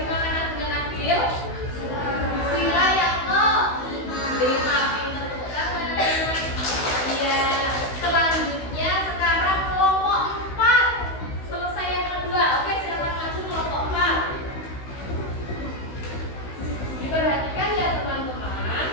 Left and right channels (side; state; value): right; late; 16 ms